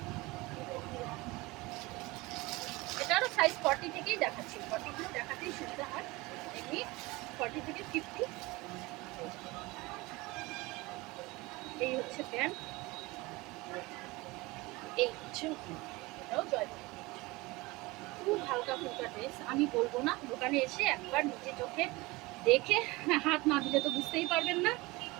এটারও সাইজ 40 থেকেই দেখাচ্ছি, 40 দেখাতেই সুবিধা হয়, এমনি 40 থেকে 50। এই হচ্ছে প্যান্ট, এই হচ্ছে এটাও জয়পুরি, খুব হালকা ফুলকা ড্রেস। আমি বলবো না, দোকানে এসে একবার নিজে চোখে দেখে হাত না দিলে তো বুঝতেই পারবেন না।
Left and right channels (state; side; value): quieter; left; 22.4 dB